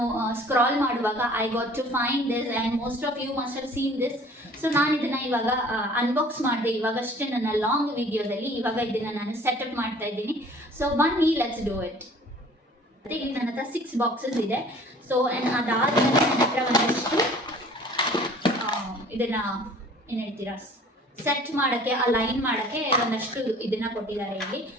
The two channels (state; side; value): normal; both; correlation 0.50